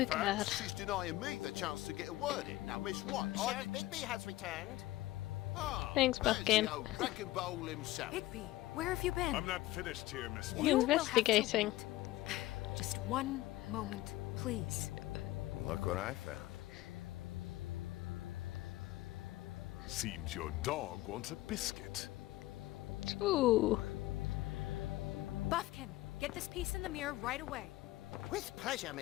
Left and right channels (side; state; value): right; quieter; 17.1 dB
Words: facts? She's denying me the chance to get a word in. Now, Miss White, Sheriff Bigby has returned. Thanks, there's Buckin. the old wrecking bowl himself. Bigby, where have you been? I'm not finished here, Miss White. You will have to investigating. wait. Just one moment, please. Look what I found. Seems your dog wants a biscuit. Ooh. Buffkin, get this piece in the mirror right away. With pleasure,